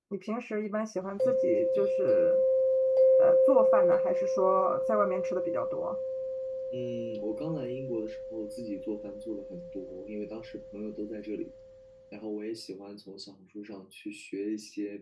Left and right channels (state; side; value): identical; both; correlation 1.00